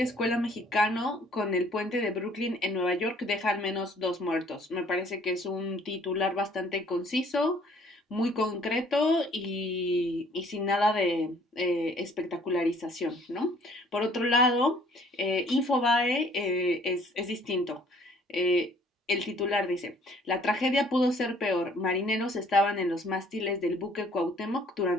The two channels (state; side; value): normal; both; correlation 0.58